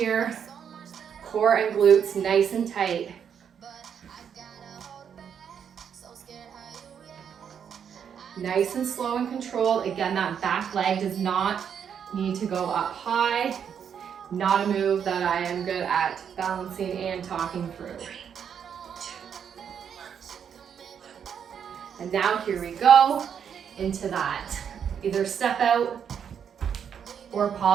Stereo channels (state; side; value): quieter; left; 7.9 dB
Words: Core and glutes nice and tight. Nice and slow and controlled. Again, that back leg does not need to go up high. Not a move that I am good at balancing and talking through. And now here we go into that. Either step out or